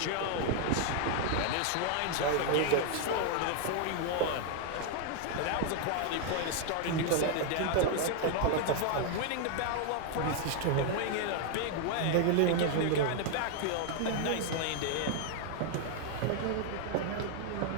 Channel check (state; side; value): different; both; correlation 0.00